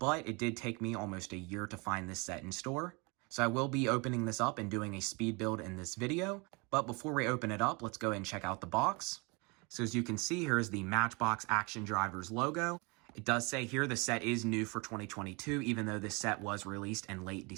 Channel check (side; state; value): left; quieter; 29.1 dB